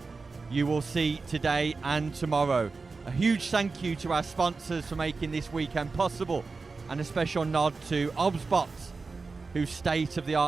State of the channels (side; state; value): left; quieter; 4.2 dB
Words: you will see today and tomorrow. A huge thank you to our sponsors for making this weekend possible, and a special nod to ObsBot, whose